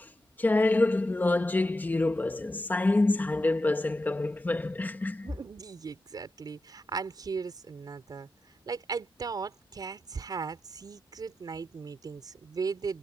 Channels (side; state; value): both; normal; correlation 0.89